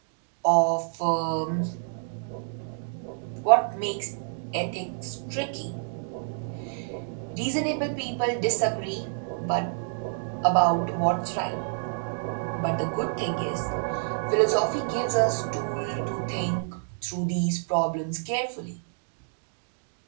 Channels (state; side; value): silent; left; digital silence